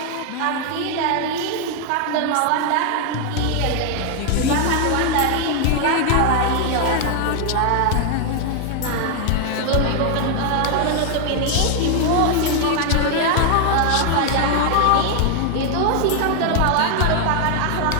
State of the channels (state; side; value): different; both; correlation 0.00